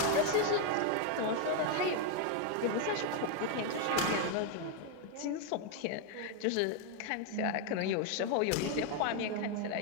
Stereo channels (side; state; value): both; different; correlation 0.01